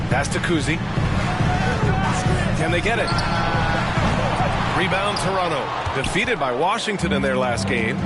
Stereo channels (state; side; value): identical; both; correlation 1.00